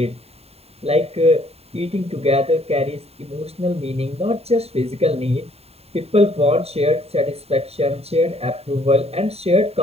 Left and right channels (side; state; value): left; late; 0.29 ms